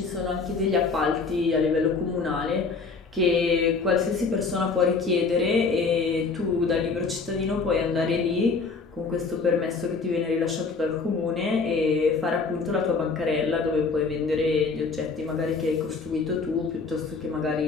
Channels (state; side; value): quieter; right; 4.5 dB